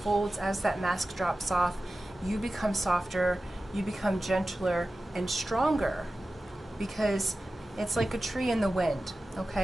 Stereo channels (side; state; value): both; normal; correlation 0.95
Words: as that mask drops off, you become softer, you become gentler and stronger, because it's like a tree in the wind,